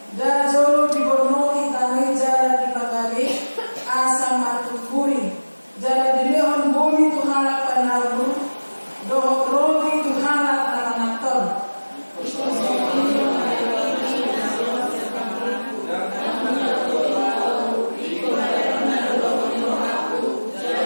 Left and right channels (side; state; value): both; inverted; correlation -1.00